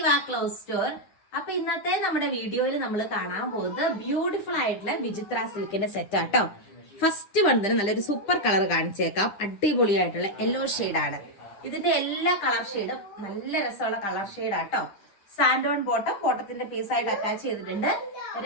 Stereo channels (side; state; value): right; late; 9.9 ms